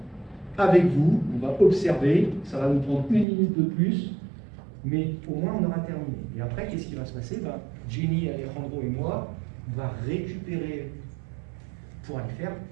avec vous, on va observer, ça va nous prendre 1 minute de plus, mais au moins on aura terminé. Et après, qu'est-ce qui va se passer? Jenny, Alejandro et moi, on va récupérer pour aller faire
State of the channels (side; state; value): left; drops out; at 3.2 s